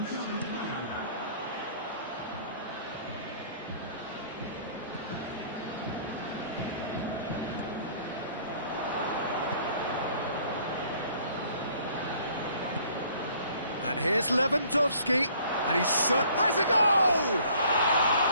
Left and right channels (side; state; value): both; inverted; correlation -0.56